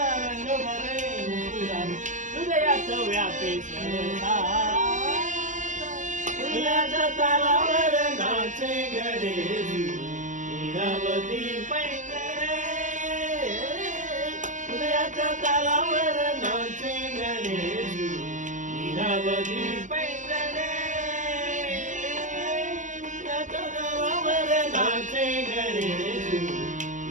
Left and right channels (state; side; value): late; left; 0.36 ms